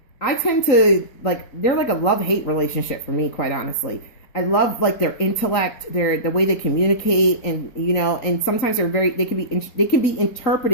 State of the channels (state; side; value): late; right; 3.9 ms